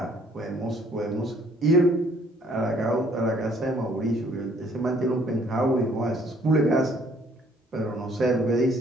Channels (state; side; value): normal; both; correlation 0.61